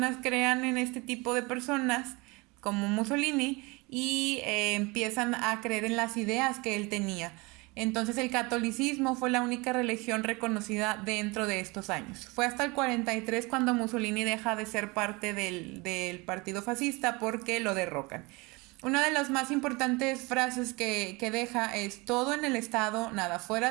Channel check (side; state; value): left; quieter; 25.8 dB